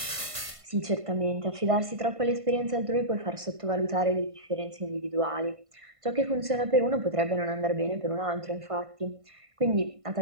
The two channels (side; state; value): left; late; 1.5 ms